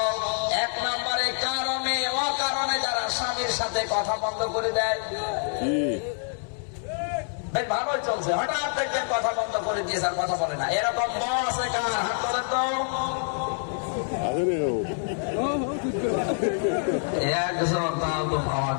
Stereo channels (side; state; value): right; silent; 61 dB below the other